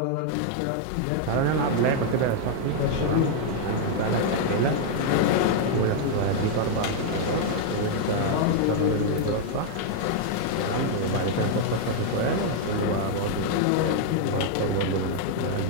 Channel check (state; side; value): different; both; correlation 0.00